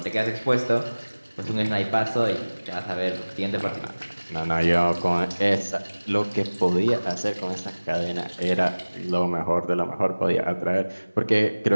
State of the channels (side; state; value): both; inverted; correlation -1.00